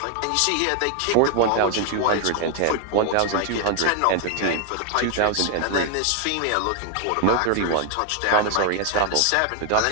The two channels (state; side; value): different; both; correlation 0.00